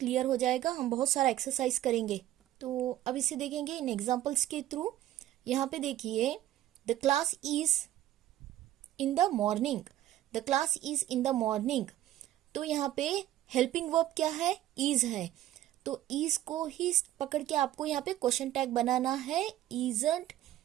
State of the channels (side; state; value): left; quieter; 13.4 dB